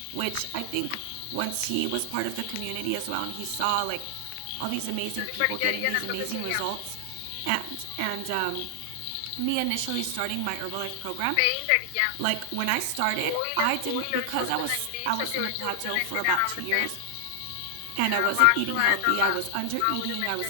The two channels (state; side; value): different; both; correlation 0.00